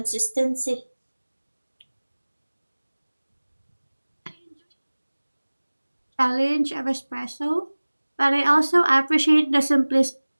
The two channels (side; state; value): both; inverted; correlation -1.00